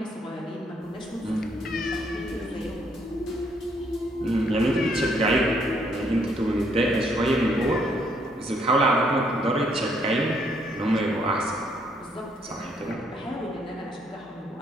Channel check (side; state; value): both; normal; correlation 0.70